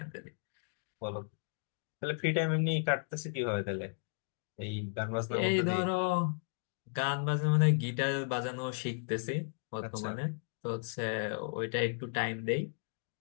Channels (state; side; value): silent; right; digital silence